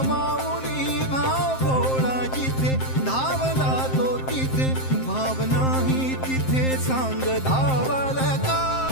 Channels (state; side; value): late; right; 7.6 ms